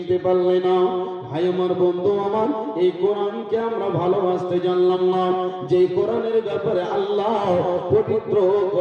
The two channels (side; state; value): both; identical; correlation 1.00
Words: পারলে না। ভাই আমার বন্ধু আমার, এই কোরআনকে আমরা ভালোবাসতে জানলাম না, যে কোরআনের ব্যাপারে আল্লাহ পবিত্র